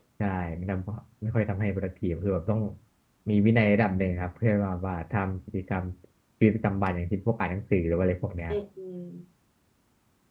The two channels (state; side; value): identical; both; correlation 1.00